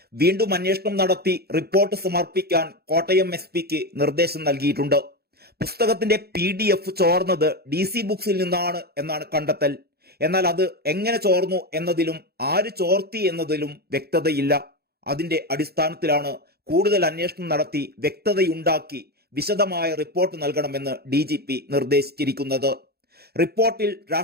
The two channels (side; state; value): left; late; 0.46 ms